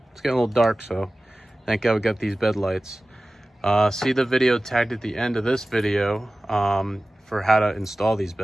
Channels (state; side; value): normal; both; correlation 0.97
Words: it's getting a little dark, so thank God we got these bed lights. See the video tagged at the end of this video for how to install these